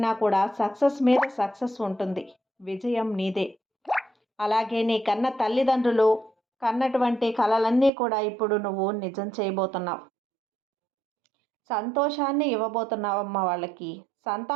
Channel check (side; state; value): left; drops out; at 7.9 s